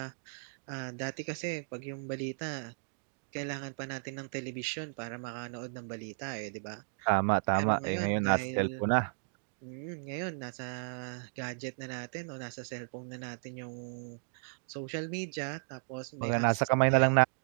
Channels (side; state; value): left; silent; digital silence